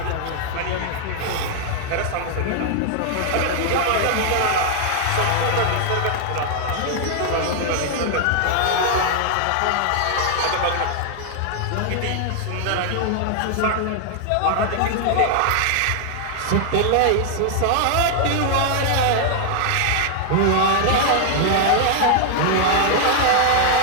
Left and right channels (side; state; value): both; different; correlation 0.00